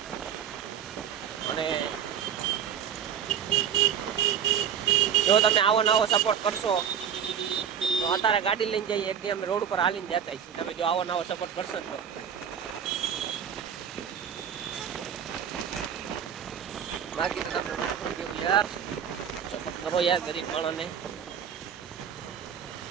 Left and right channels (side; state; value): left; quieter; 8.4 dB